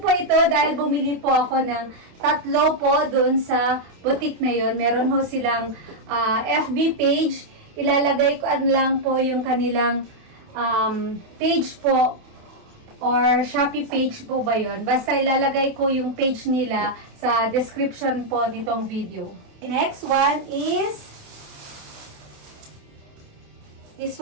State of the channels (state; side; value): late; left; 28 ms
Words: ito dahil bumili po ako ng 3 po doon sa boutique na yon. Meron ho silang FB page. Ilalagay ko lang po yung kanilang page po or Shopee page po ba yon. Basta ilalagay ko yung page nila sa description po nitong video. The next one is this